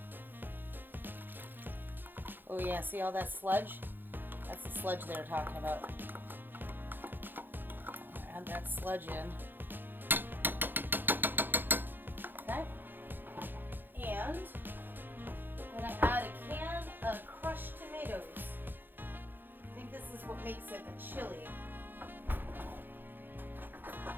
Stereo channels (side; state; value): left; late; 0.094 ms